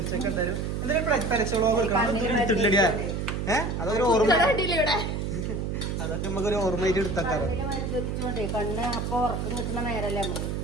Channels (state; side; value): noise; right; hum, 2 dB below the sound